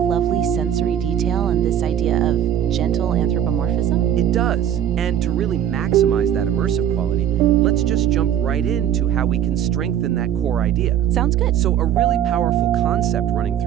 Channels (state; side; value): quieter; left; 10.0 dB